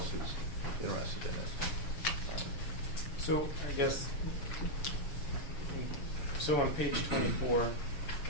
who's interested in it. So I guess, so on page 24,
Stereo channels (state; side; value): late; right; 7.0 ms